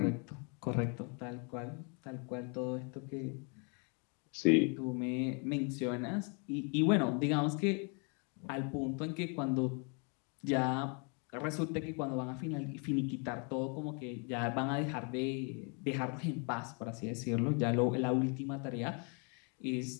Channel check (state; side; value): quieter; right; 36.2 dB